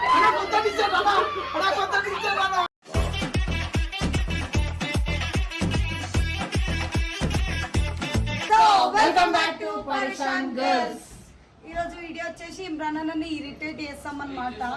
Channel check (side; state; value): both; identical; correlation 1.00